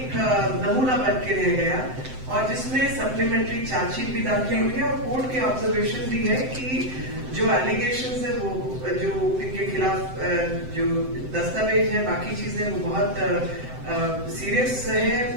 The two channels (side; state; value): left; late; 7.8 ms